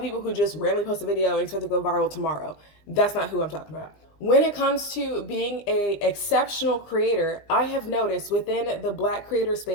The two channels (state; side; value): late; right; 19 ms